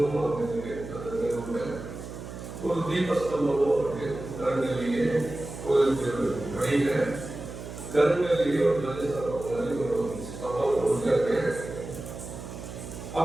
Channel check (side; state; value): right; noise; hum, 11 dB below the sound